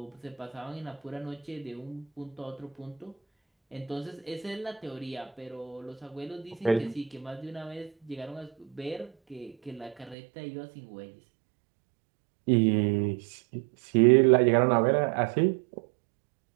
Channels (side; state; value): left; drops out; at 10.2 s